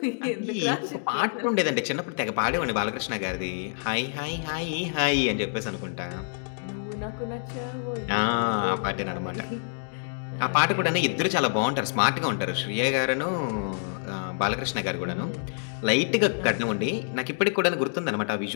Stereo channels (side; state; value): right; silent; digital silence